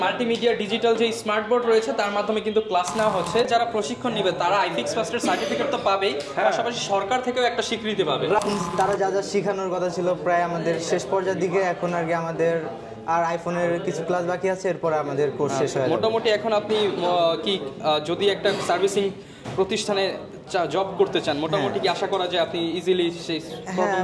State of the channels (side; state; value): both; identical; correlation 1.00